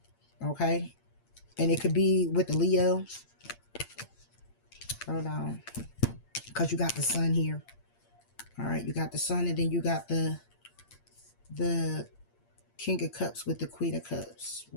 Okay, and it could be with the Leo. Hold on, because you got the Sun here. All right, you got the Sun, and then you got the King of Cups with the Queen of Cups.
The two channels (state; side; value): late; right; 8.6 ms